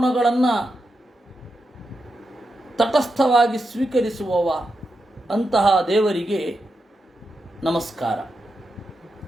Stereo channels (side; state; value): both; normal; correlation 0.87